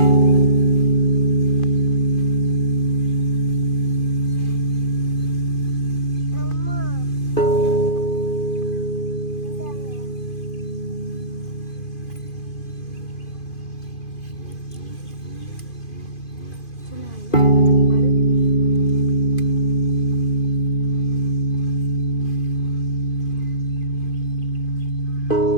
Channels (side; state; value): right; late; 2.5 ms